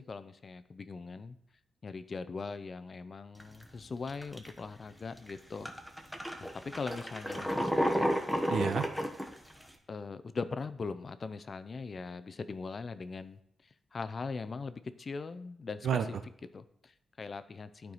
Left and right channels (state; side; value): normal; both; correlation 0.88